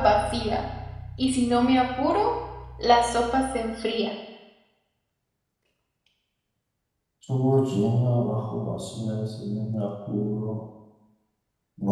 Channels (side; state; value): both; identical; correlation 1.00